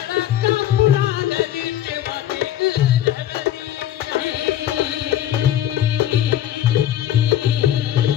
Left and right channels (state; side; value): quieter; right; 12.0 dB